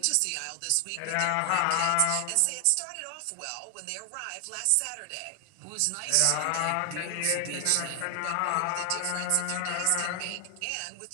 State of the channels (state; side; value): different; both; correlation 0.00